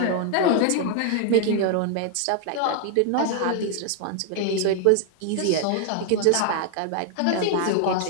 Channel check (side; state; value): both; different; correlation 0.00